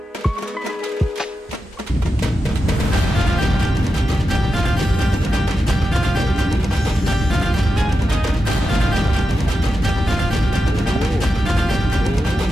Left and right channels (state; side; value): normal; both; correlation 0.89